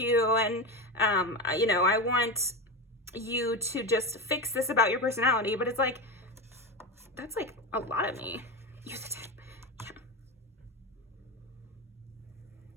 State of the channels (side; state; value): both; normal; correlation 0.18